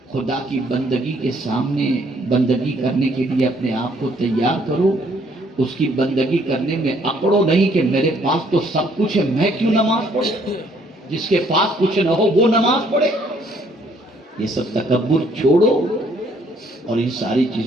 خدا کی بندگی کے سامنے بندگی کرنے کے لیے اپنے آپ کو تیار کرو۔ اس کی بندگی کرنے میں اکڑو نہیں کہ میرے پاس تو سب کچھ ہے، میں کیوں نماز پڑھوں؟ جس کے پاس کچھ نہ ہو وہ نماز پڑھے۔ یہ سب تکبر چھوڑو اور ان ساری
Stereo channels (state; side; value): normal; both; correlation 0.65